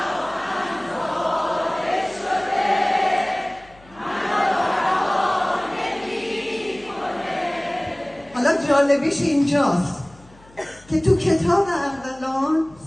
جالبیش اینجاست که تو کتاب ارغلان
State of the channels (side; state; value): left; noise; hum, 26 dB below the sound